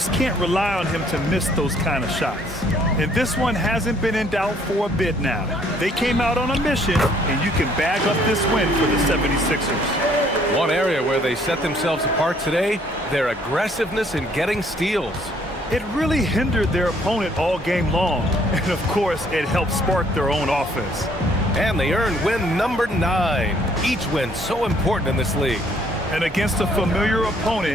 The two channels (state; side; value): normal; both; correlation 0.63